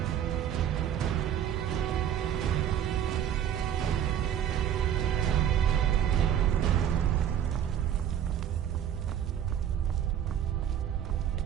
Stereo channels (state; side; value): quieter; left; 9.8 dB